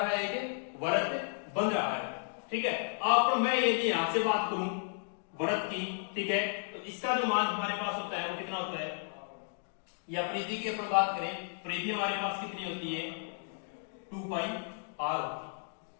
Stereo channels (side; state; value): right; silent; 55 dB below the other